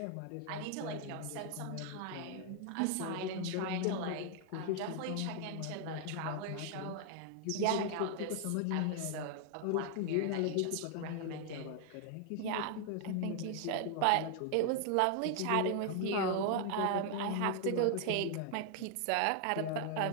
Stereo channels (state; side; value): different; both; correlation 0.00